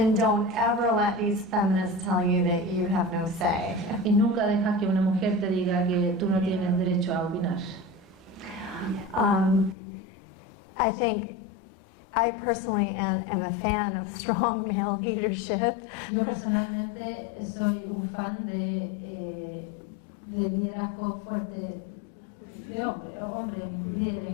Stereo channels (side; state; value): right; drops out; at 9.8 s